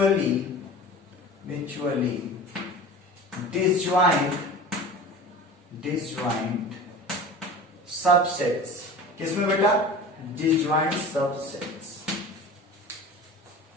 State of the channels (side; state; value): both; normal; correlation 0.37